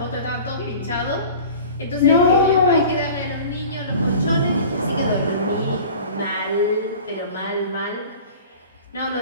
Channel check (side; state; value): both; inverted; correlation -0.41